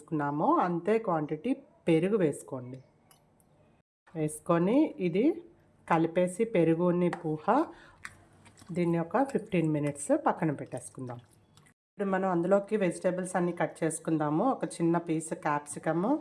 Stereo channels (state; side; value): identical; both; correlation 1.00